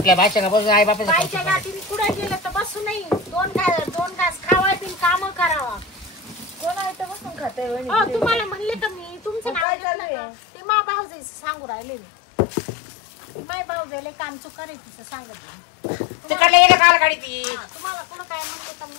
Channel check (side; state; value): right; drops out; at 9.7 s